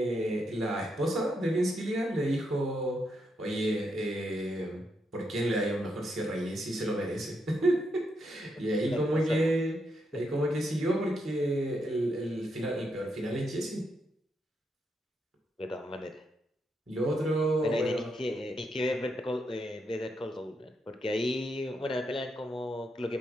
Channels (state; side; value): normal; both; correlation 0.80